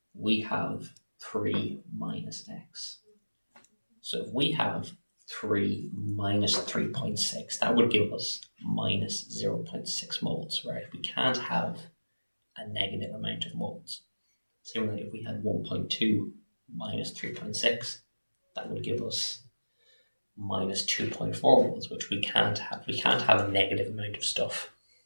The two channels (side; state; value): both; inverted; correlation -1.00